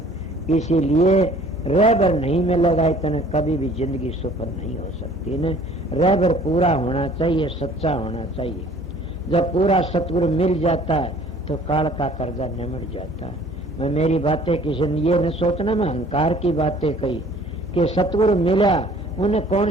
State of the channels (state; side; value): normal; both; correlation 0.53